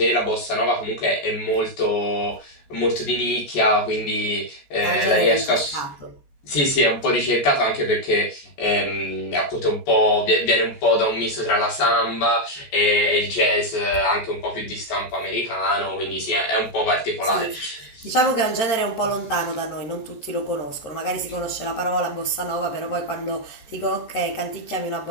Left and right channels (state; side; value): late; right; 14 ms